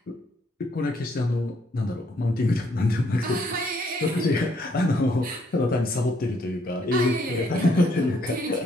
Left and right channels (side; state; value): both; normal; correlation 0.70